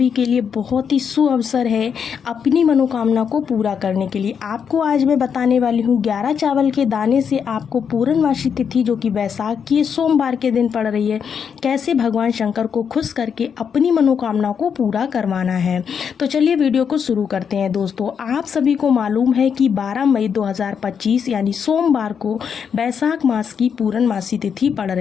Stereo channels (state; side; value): quieter; right; 7.1 dB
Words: के लिए बहुत ही शुभ अवसर है अपनी मनोकामना को पूरा करने के लिए। आपको आज मैं बताने वाली हूँ 11 चावल के दाने से आपको पूर्णमासी तिथि, जो कि बैसाख की सोमवार के दिन पड़ रही है, कैसे भगवान शंकर को खुश करके अपनी मनोकामना को पूरा करवाना है। तो चलिए वीडियो को शुरू करते हैं। दोस्तों, आप सभी को मालूम है कि 12 मई 2025 यानी सोमवार को बैसाख मास की पूर्णमासी तिथि पड़